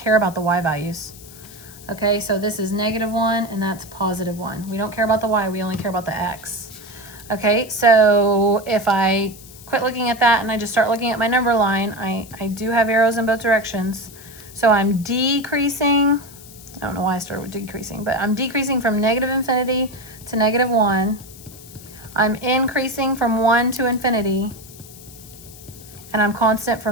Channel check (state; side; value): noise; left; hiss, 19 dB below the sound